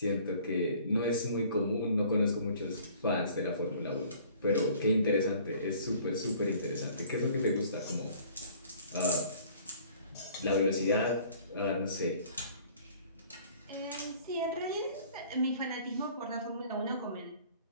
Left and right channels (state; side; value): inverted; both; correlation -0.53